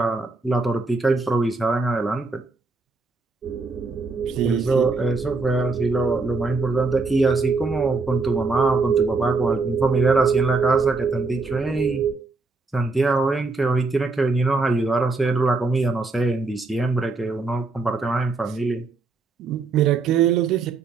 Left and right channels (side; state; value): left; quieter; 3.9 dB